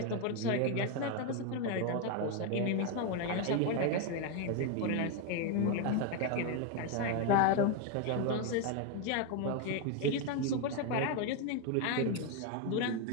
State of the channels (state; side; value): different; both; correlation 0.01